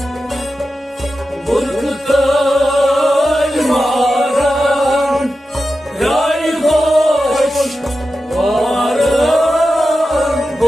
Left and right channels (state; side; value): normal; both; correlation 0.92